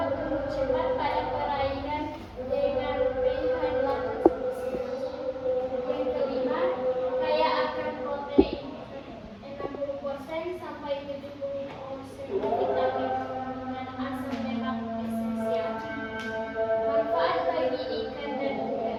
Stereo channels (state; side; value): identical; both; correlation 1.00